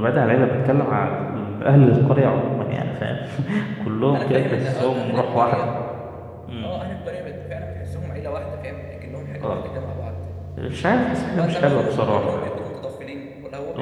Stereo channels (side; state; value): both; identical; correlation 1.00